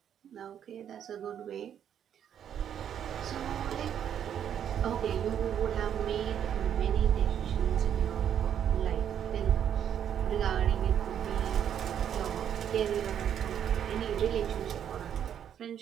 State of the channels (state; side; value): quieter; left; 9.3 dB